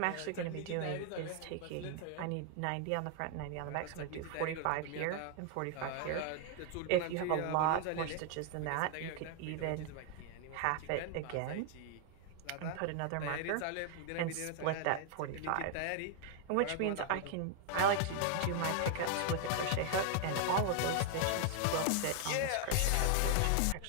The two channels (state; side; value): different; both; correlation 0.00